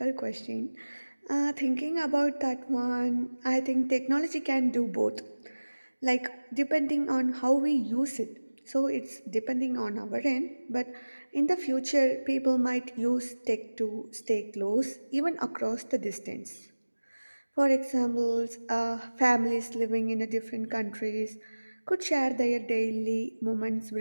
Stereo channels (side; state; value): both; inverted; correlation -1.00